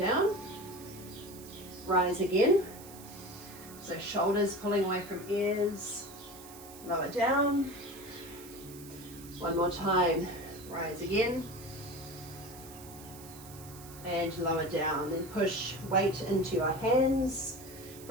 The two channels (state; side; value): noise; right; hiss, 17 dB below the sound